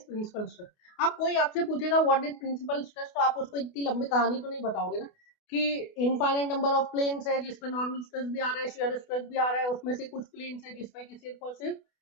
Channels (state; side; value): late; right; 28 ms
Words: principal stress. अब कोई आपसे पूछेगा what is principal stress, तो आप उसको इतनी लंबी कहानी तो नहीं बताओगे ना कि इनफाइनाइट नंबर ऑफ प्लेन्स है जिसपे नॉर्मल स्ट्रेस भी आ रहा है, शेयर स्ट्रेस भी आ रहा है, उसमें से कुछ प्लेन्स है जिसपे कि सिर्फ और सिर्फ